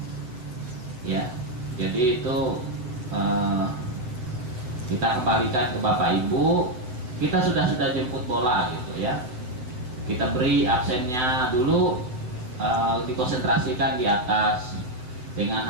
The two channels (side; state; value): left; late; 7.9 ms